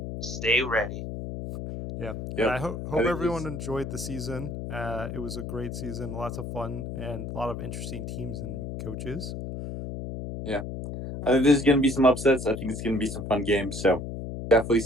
stay ready. Yeah, and yep. I I hope think everyone enjoyed the season. It was a great season, lots of fun, and a lot of interesting teams and coaches. yeah. I think there's gonna be some upsets. I think it's gonna be some fun games. So definitely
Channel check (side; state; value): left; noise; hum, 7 dB below the sound